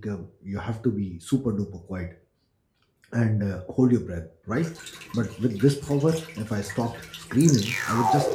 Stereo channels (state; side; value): identical; both; correlation 1.00